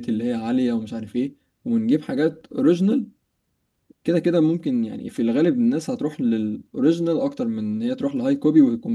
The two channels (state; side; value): identical; both; correlation 1.00